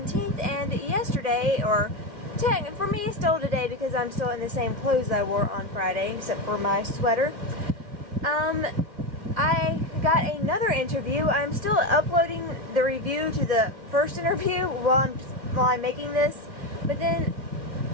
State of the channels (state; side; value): late; left; 2.3 ms